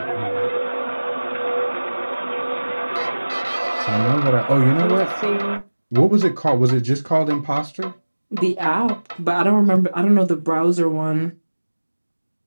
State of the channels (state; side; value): inverted; both; correlation -1.00